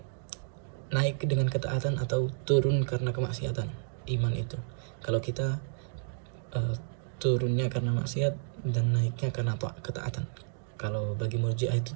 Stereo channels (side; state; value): left; silent; digital silence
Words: naik dengan ketaatan atau turun karena kemaksiatan. Iman itu, kalau kita turunnya karena maksiat dan naiknya karena ketaatan. Kalau bagi Murji'ah itu